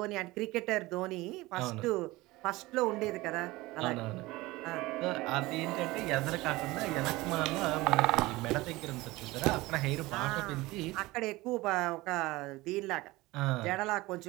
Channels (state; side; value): quieter; left; 20.2 dB